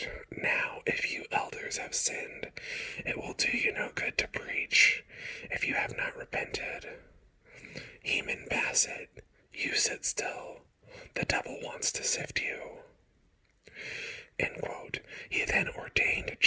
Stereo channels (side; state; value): both; identical; correlation 1.00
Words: now, if you elders have sinned, it will do you no good to preach, if you have not repented. Heman Bassett, you sit still. The devil wants to sift you. End quote. He then ordained